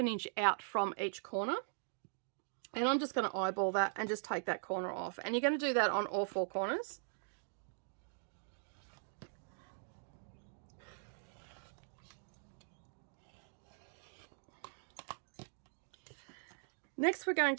inch out from each corner. And I'm just going to eyeball that and just take that corner off. And you're going to do that on all 4 corners. Next, we're going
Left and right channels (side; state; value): left; silent; digital silence